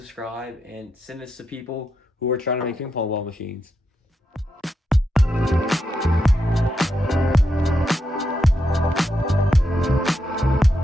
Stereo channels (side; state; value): both; normal; correlation 0.84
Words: and send this to people who are trying to make ping pong ball machines.